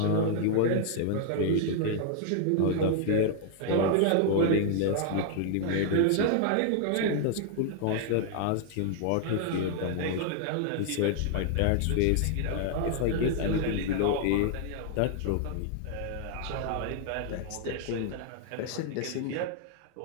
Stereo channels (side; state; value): both; different; correlation 0.00